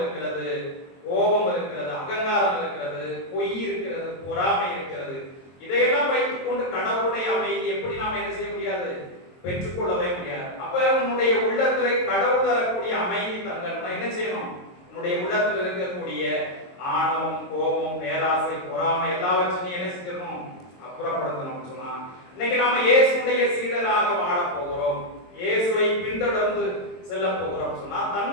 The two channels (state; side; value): late; right; 22 ms